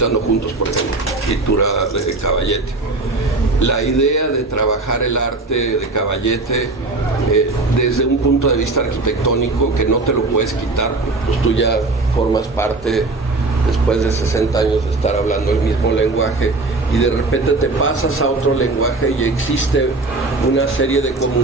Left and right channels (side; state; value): left; quieter; 3.3 dB